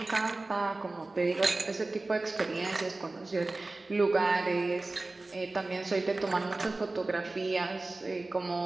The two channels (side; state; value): left; quieter; 3.1 dB